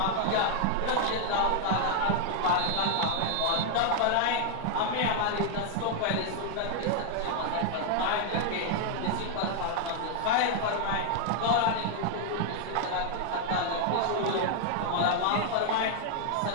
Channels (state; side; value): different; both; correlation 0.00